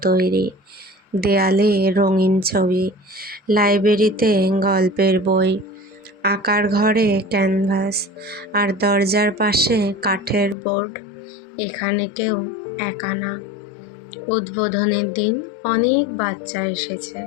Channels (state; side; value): drops out; right; at 10.6 s